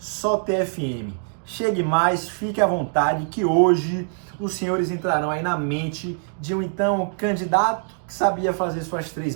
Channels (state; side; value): silent; left; 62 dB below the other